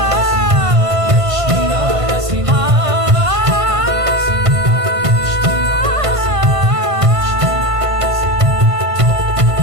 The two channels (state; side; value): late; left; 1.5 ms